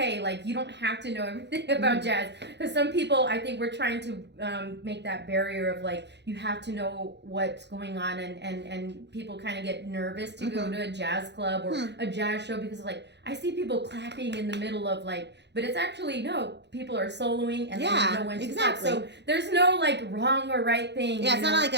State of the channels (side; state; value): left; late; 0.50 ms